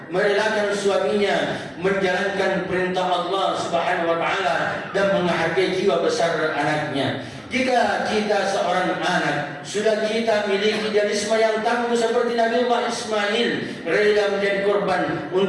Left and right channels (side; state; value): both; identical; correlation 1.00